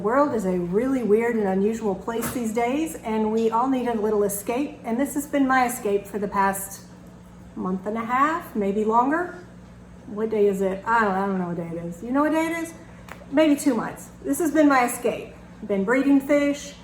is a really weird and unusual place these days, and we all need a little escape, and this has been my escape for the past month and a half, maybe longer. What day is it? I don't know what day it is. You know what day it is? Maybe 2 months. This has been my escape. Been breeding fish,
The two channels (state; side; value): identical; both; correlation 1.00